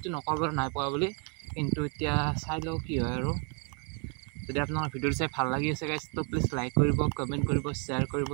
নকওঁ বাৰু নাই পোৱা বুলি কিন্তু এতিয়া চাই লওঁ কি হয় আৰু যদি আপোনালোকৰ ভিডিঅ'টো চাই ভাল লাগি আছে গাইজ তো প্লিজ লাইক কৰিব কমেণ্ট কৰিব শ্বেয়াৰ কৰিব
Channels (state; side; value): quieter; left; 34.0 dB